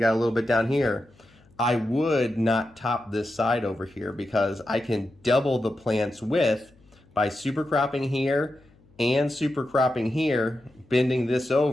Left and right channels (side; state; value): left; noise; hum, 30 dB below the sound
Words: a little bit down here, I would not top this side over here because I can double the plant's width by super cropping here and super cropping here, bending this